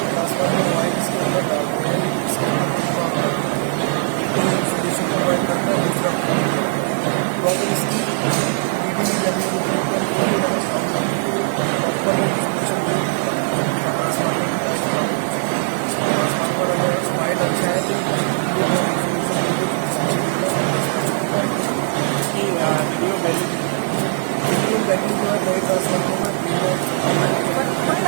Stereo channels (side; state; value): left; silent; digital silence